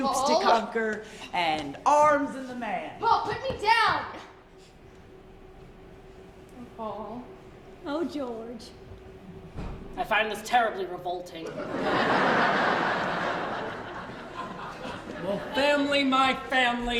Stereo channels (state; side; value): identical; both; correlation 1.00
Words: Paul. to conquer, and arms in the man. Paul, put me down! Paul. Oh, George. I find this terribly revolting. Well, family, my